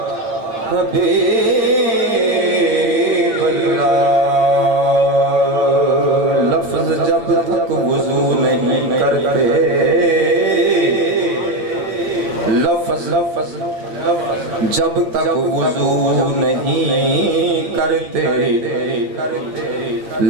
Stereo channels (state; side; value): late; left; 8.8 ms